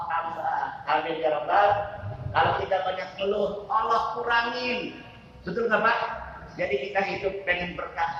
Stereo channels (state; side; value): identical; both; correlation 1.00